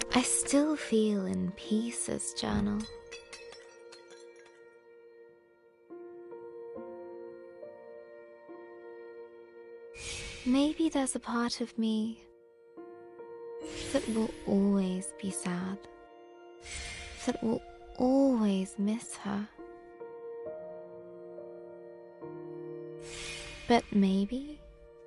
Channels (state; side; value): identical; both; correlation 1.00